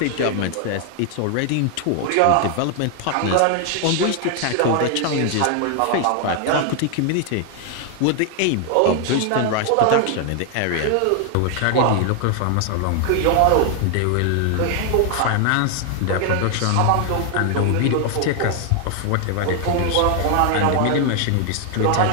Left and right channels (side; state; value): both; different; correlation 0.00